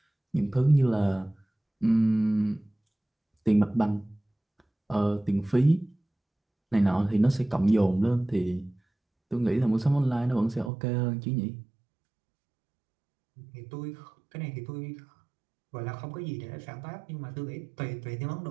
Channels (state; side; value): drops out; left; at 10.7 s